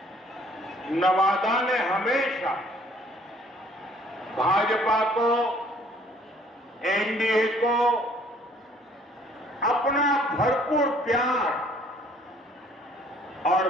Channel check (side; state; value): both; normal; correlation 0.59